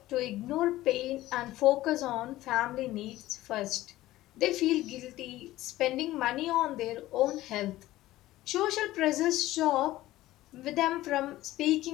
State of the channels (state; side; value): quieter; right; 16.1 dB